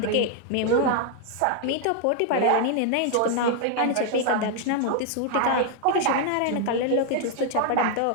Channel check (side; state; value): both; different; correlation 0.00